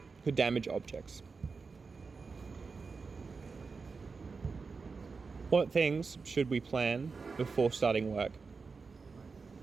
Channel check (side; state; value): left; quieter; 4.7 dB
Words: could damage objects. What things should we plan before starting work?